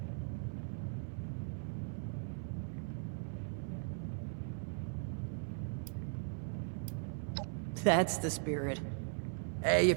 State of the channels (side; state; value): left; silent; 52 dB below the other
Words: That's the spirit. Hey,